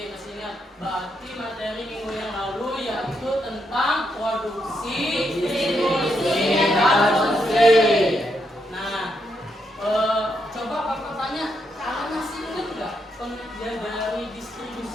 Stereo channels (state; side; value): normal; both; correlation 0.80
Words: masih ingat. Berarti materi minggu yang lalu yaitu tentang produksi, distribusi, dan konsumsi. Nah, coba Bapak tanya, kalian masih ingat nggak pengertian dari